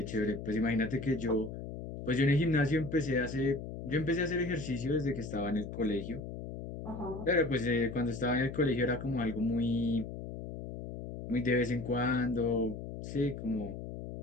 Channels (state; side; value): noise; left; hum, 9 dB below the sound